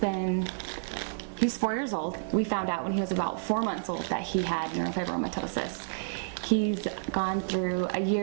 4 years old. We found out when he was about 4 months old that he had neurofibromatosis. He's gone through a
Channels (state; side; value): silent; left; digital silence